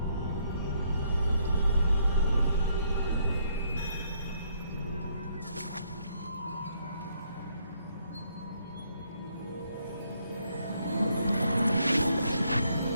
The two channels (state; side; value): inverted; both; correlation -0.71